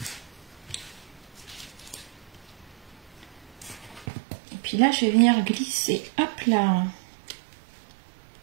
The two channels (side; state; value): left; drops out; at 4.0 s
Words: Et puis là, je vais venir glisser, hop là,